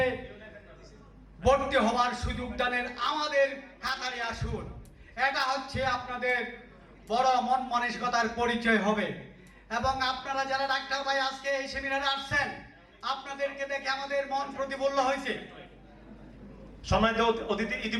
ভর্তি হওয়ার সুযোগ দানের আমাদের কাতারে আসুন। এটা হচ্ছে আপনাদের বড় মন মানসিকতার পরিচয় হবে। এবং আপনারা যারা ডাক্তার ভাই আজকে এই সেমিনারে আসছেন, আপনাদেরকে দেখে আমাদের মন প্রতিফুল্ল হয়েছে। সম্মানিত অতিথি,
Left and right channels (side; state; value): both; identical; correlation 1.00